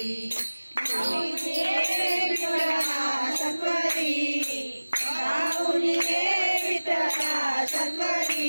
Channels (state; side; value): inverted; both; correlation -1.00